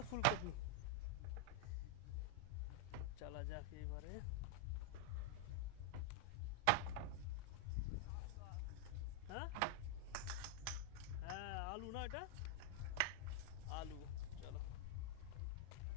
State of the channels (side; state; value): both; different; correlation 0.00